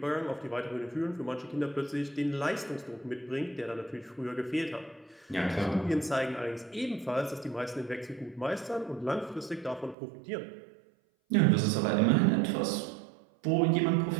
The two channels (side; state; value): left; drops out; at 10.0 s